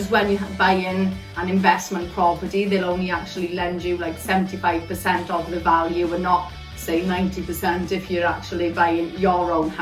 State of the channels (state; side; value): identical; both; correlation 1.00